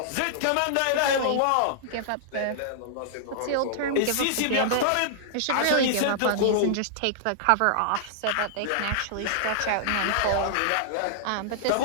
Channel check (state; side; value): different; both; correlation -0.01